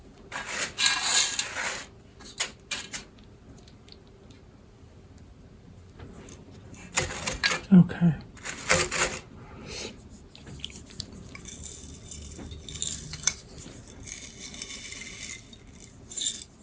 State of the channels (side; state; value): both; identical; correlation 1.00